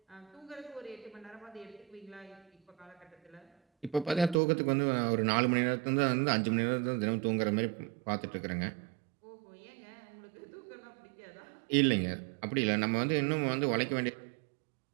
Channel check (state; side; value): drops out; left; at 4.4 s